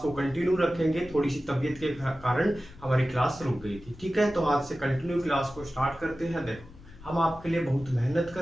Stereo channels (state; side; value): noise; left; rumble, 20 dB below the sound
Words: को कंटिन्यू रखेंगे। थोड़ी सी तबीयत के कारण हमारी क्लास रुक गई थी, ठीक है। तो आज से कंटिन्यू क्लास को स्टार्ट करते हैं। देखो हम आपके लिए बहुत मेहनत